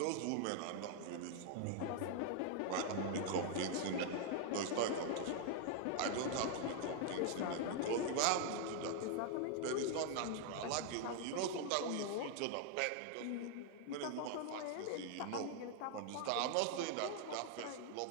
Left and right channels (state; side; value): different; both; correlation 0.00